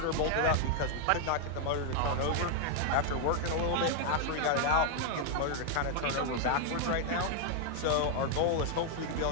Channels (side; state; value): both; different; correlation 0.00